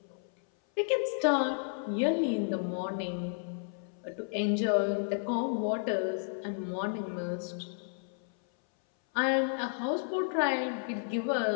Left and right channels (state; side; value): silent; right; 56 dB below the other